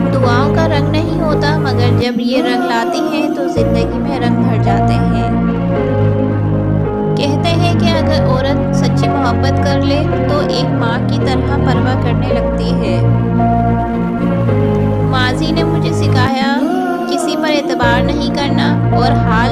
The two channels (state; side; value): identical; both; correlation 1.00